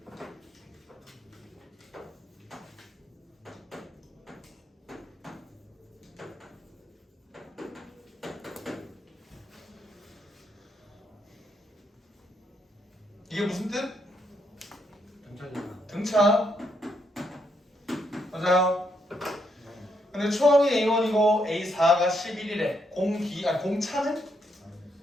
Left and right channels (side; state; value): both; normal; correlation 0.77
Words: 이게 무슨 뜻? 등차잖아. 등차. 맞아요. 근데 초항이 A1이고 A4가 11이래. 공차는